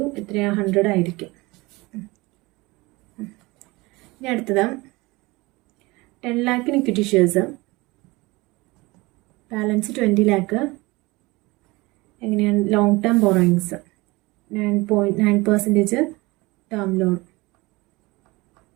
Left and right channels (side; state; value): left; quieter; 22.7 dB